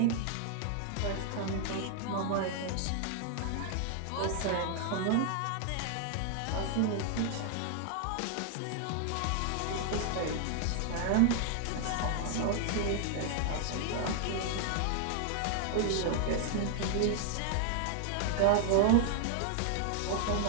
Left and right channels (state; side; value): different; both; correlation 0.00